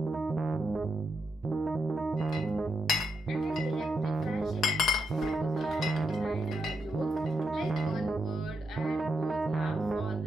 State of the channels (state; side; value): normal; both; correlation 0.83